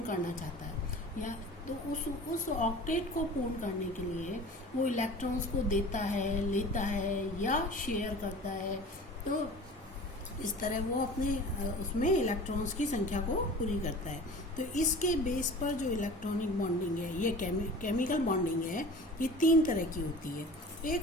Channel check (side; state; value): both; normal; correlation 0.40